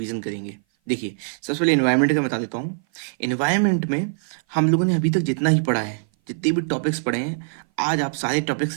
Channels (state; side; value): silent; left; 57 dB below the other